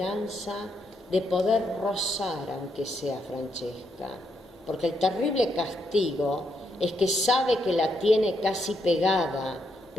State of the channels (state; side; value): normal; both; correlation 0.78